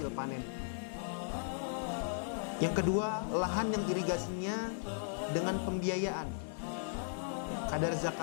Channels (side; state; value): right; silent; 53 dB below the other